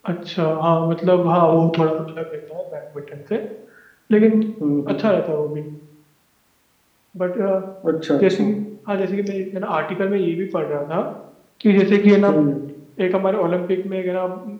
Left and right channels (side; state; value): both; identical; correlation 1.00